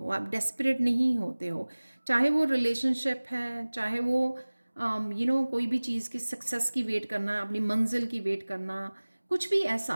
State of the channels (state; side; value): inverted; both; correlation -1.00